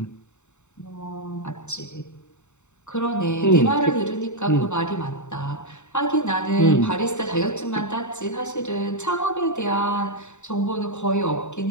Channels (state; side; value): late; right; 0.83 ms